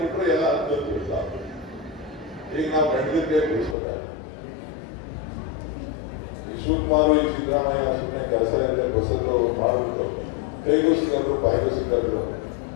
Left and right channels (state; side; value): drops out; right; at 3.8 s